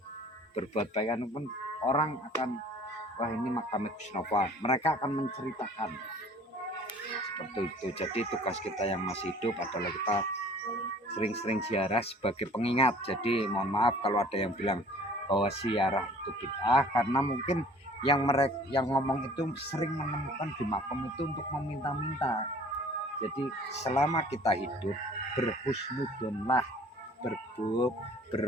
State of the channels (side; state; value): both; normal; correlation 0.50